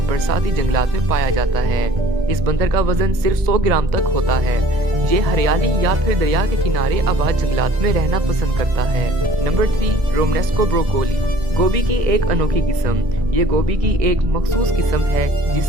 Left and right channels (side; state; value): left; late; 1.9 ms